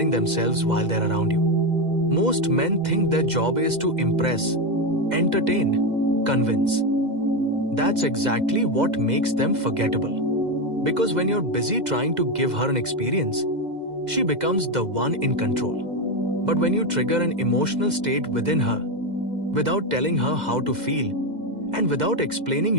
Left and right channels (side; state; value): left; late; 2.0 ms